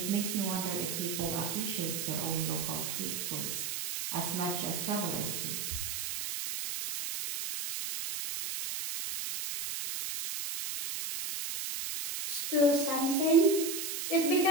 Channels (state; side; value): noise; right; hiss, 3 dB below the sound